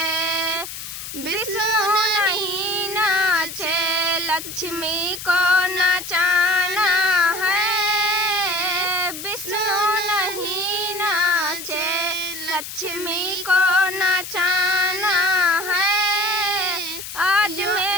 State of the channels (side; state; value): left; noise; hiss, 9 dB below the sound